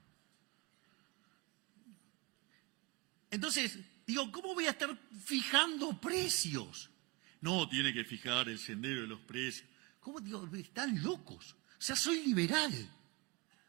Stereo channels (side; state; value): left; quieter; 25.7 dB